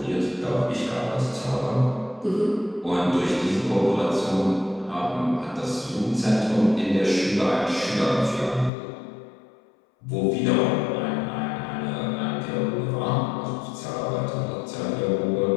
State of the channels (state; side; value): drops out; right; at 8.7 s